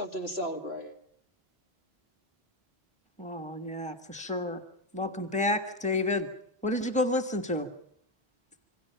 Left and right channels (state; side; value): normal; both; correlation 0.10